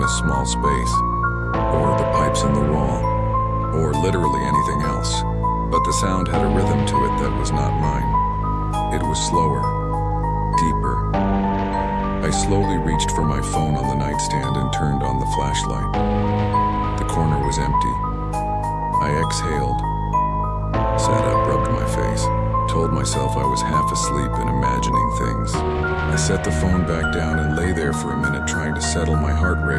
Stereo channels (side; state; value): both; identical; correlation 1.00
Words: a small space, or the pipes in the wall, or literally anything else. But the sound had a rhythm to it that was not mine. It was slower, deeper. I slowly reached for my phone on the nightstand and turned on the flashlight. The corner was empty. I exhaled, sat up, rubbed my face, told myself I was half asleep and imagining things. I set the phone back down and lay there for a minute trying to settle my heart